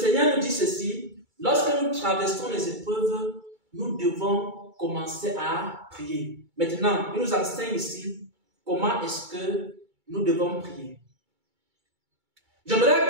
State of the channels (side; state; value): left; late; 2.3 ms